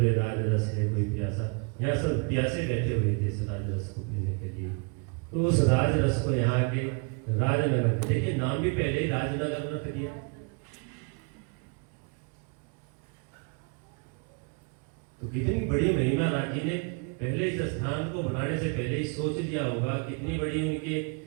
राजरस है कोई प्यासा। यहाँ सब प्यासे बैठे हुए थे इस राजरस को पीने के लिए, तो उस राजरस को यहाँ के राजनगर में, देखिए नाम भी पहले ही राजनगर रख दिया। तो कितनी बड़ी महिमा राज जी ने पहले इस स्थान को बनाने से पहले ही सोच लिया होगा, कितनी बड़ी उनके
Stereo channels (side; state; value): left; quieter; 33.3 dB